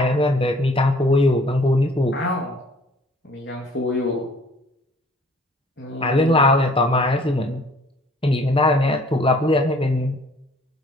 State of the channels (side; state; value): both; normal; correlation 0.56